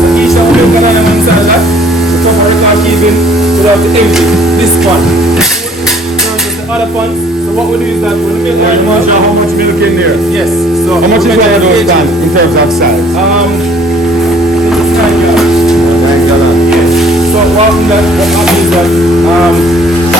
So each time we milk an animal inside that, the top of record keeping, we'll have to empty this pond. The other pond. So what we do is that when we milk animals, how much milk in there? Yes. So how much is one of those done in terms of size? It's 9 gallons. 9 gallons. Yes. So what happens is that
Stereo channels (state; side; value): normal; both; correlation 0.57